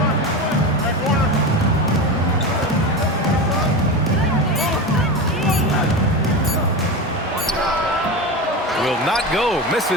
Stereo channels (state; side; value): normal; both; correlation 0.22